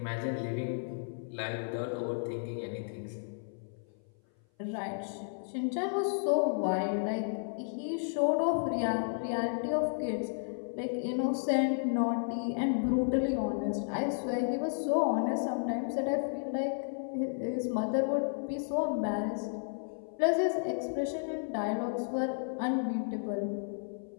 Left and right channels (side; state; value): right; silent; 56 dB below the other